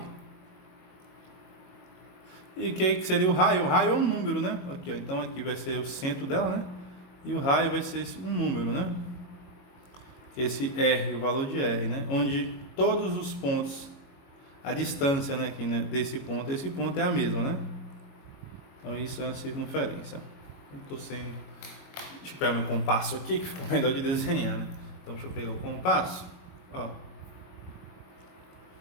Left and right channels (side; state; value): right; late; 22 ms